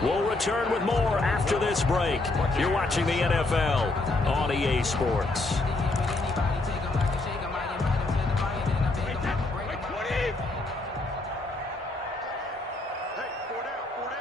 We'll return with more after this break. You're watching the NFL on EA Sports.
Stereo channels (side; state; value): right; quieter; 3.0 dB